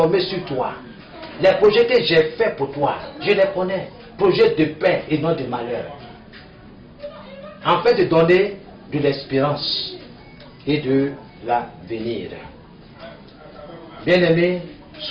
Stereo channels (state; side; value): identical; both; correlation 1.00